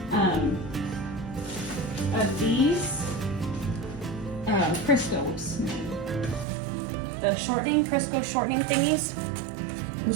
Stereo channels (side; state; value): left; drops out; at 6.5 s